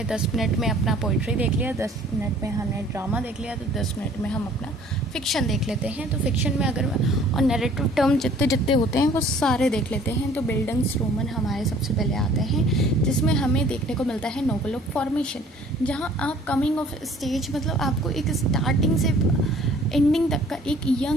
10 मिनट में अपना पोइट्री देख लिया, 10 मिनट में हमने ड्रामा देख लिया, तो 10 मिनट में हम अपना फ़िक्शन देख लेते हैं। तो फ़िक्शन में अगर और नैरेटिव टर्म जितने जितने होते हैं वो सारे देख लेते हैं। तो बिल्डिंग्सरोमन हमारे सबसे पहले आते हैं, जिसमें हमें देखने को मिलता है नोवेल ऑफ फॉर्मेशन, जहाँ आप कमिंग ऑफ स्टेज, मतलब आपको एक स्टार्टिंग से एंडिंग तक का एक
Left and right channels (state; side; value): normal; both; correlation 0.54